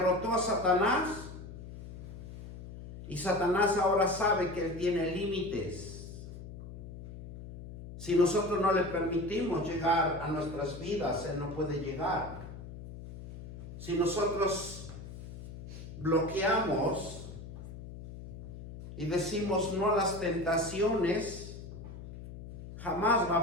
a Satanás y Satanás ahora sabe que él tiene límites. Si nosotros no le permitimos llegar a nuestras vidas, él no puede llegar. Si nosotros bloqueamos y decimos no a las tentaciones, jamás va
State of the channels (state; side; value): noise; left; hum, 12 dB below the sound